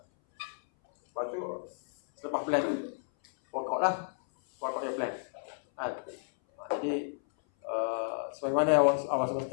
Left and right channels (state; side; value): silent; right; 57 dB below the other